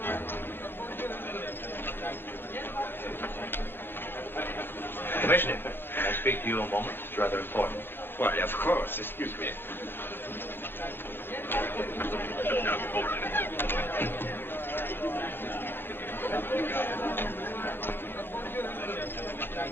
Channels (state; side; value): late; right; 0.10 ms